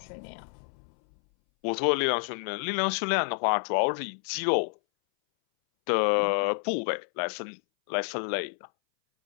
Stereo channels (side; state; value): right; silent; 59 dB below the other